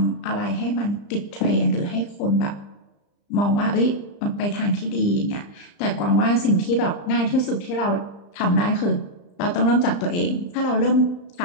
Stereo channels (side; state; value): right; late; 35 ms